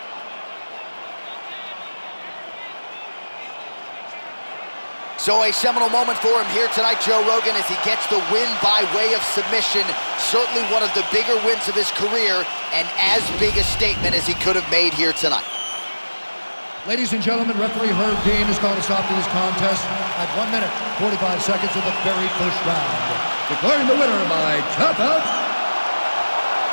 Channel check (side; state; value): both; inverted; correlation -1.00